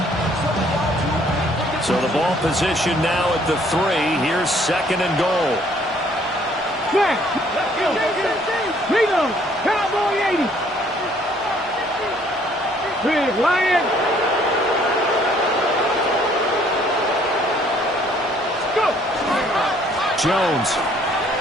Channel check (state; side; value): normal; both; correlation 0.62